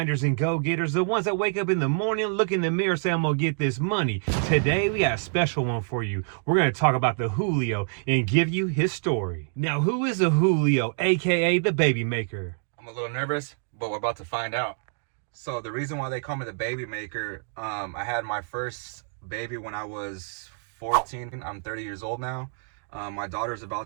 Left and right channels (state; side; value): silent; left; 60 dB below the other